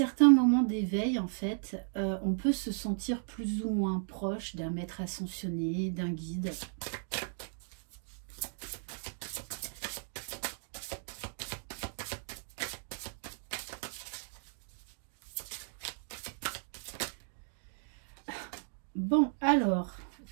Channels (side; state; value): left; silent; digital silence